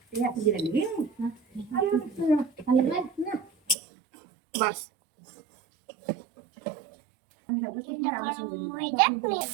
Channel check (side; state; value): left; drops out; at 3.8 s